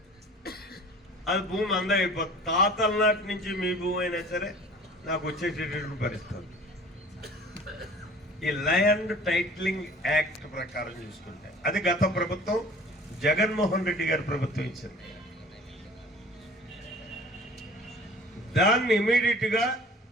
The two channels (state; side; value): normal; both; correlation 0.46